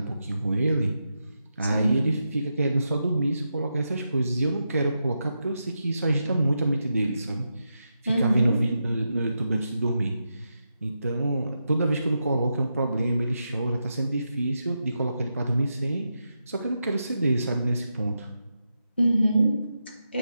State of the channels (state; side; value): inverted; both; correlation -0.86